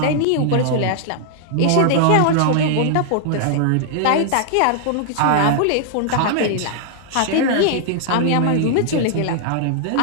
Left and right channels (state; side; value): different; both; correlation 0.00